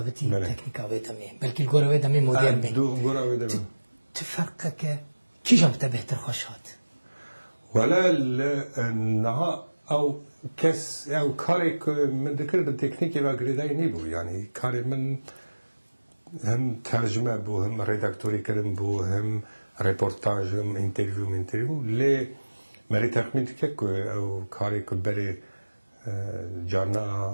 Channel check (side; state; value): both; inverted; correlation -1.00